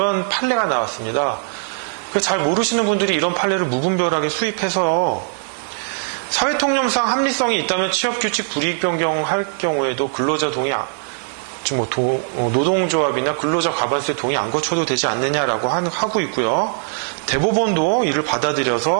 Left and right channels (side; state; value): left; silent; digital silence